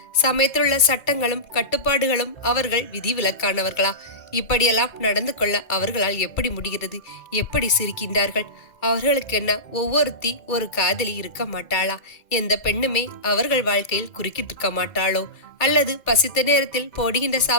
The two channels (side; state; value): right; late; 2.1 ms